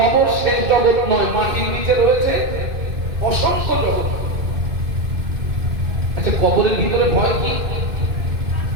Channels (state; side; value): late; left; 2.5 ms